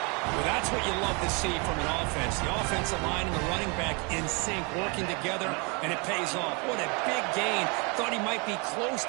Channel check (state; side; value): quieter; left; 31.5 dB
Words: Well, that's what you love to see from an offense. The offensive line and the running back in sync, working together, and it pays off. What a big gain. Thought he might be close